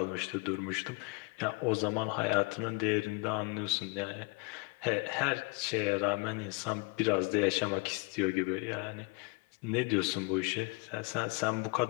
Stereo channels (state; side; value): quieter; right; 29.4 dB